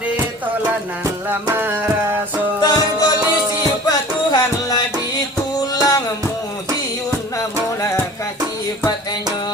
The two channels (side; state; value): both; normal; correlation 0.43